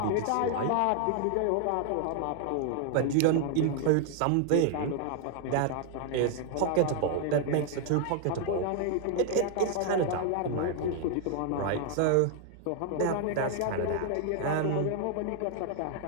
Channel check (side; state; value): both; different; correlation 0.00